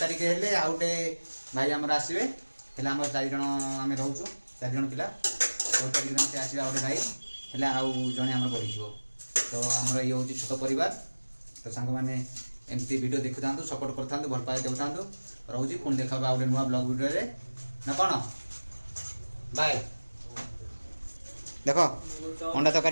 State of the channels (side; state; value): both; inverted; correlation -1.00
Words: ତାରିଖ ହେଲେ ଆଉ ଗୋଟେ ଭାଇ ଆମର ଆସିବେ। ହେଲେ ଆମର 4 ଜଣ ଆମେ ରହୁଛୁ 4 ଜଣ ପିଲା। 14 ତାରିଖ ଦିନ ସେ ଆସିବେ ଆଉ ଗୋଟେ ଭାଇ ହେଲେ ଆଉ ଜଣେ ଆମର ବଢ଼ିଯିବ। ତ ଆମର ଇଏ ହେଉଛି ଛୋଟ ପରିବାର। ତ ସାଙ୍ଗମାନେ ଏମିତି ଭିଡ଼ିଓ ଦେଖୁଥାନ୍ତୁ ସପୋର୍ଟ କରିଥାନ୍ତୁ ଭଲ ପାଇବା ଦେଉଥାନ୍ତୁ। ରହୁଛି ପୁଣି ଦେଖା ଆଉ ଗୋଟେ ନୂଆ ବ୍ଲଗ୍ ଭିଡ଼ିଓରେ ନା କ'ଣ ବାଏ। ଦେଖ ଅଣ୍ଡା